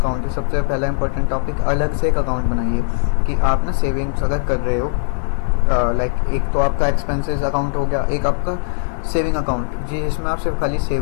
है, सबसे पहला इंपॉर्टेंट टॉपिक, अलग से एक अकाउंट बनाइए कि आप ना सेविंग्स अगर कर रहे हो, एक तो आपका एक्सपेंसेस अकाउंट हो गया, एक आपका सेविंग अकाउंट जिसमें आप सिर्फ खाली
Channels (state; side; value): silent; right; 66 dB below the other